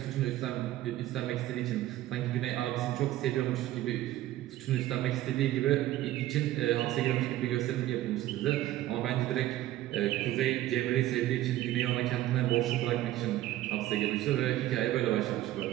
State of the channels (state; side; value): quieter; left; 14.7 dB